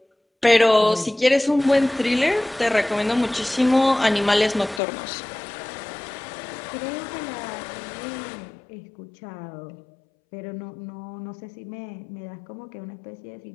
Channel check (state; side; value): drops out; right; at 4.8 s